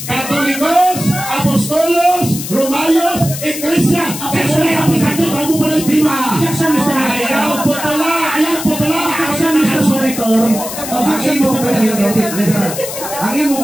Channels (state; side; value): noise; left; hiss, 8 dB below the sound